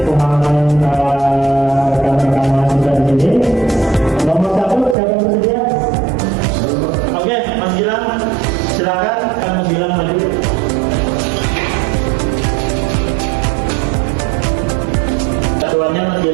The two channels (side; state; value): left; drops out; at 5.0 s